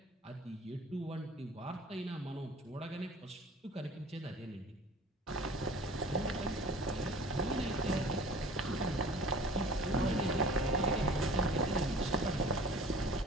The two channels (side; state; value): both; normal; correlation 0.45